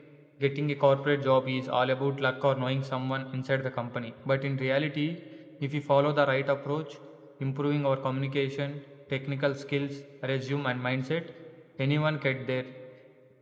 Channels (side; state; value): both; identical; correlation 1.00